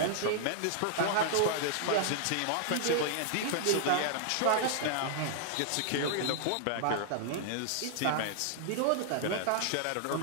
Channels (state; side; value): different; both; correlation -0.01